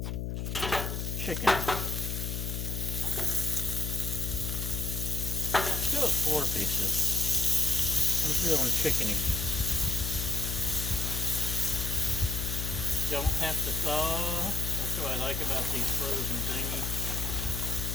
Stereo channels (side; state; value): left; noise; hum, 3 dB below the sound